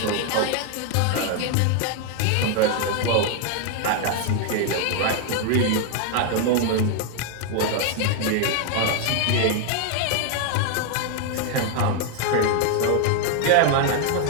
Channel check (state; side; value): different; both; correlation 0.00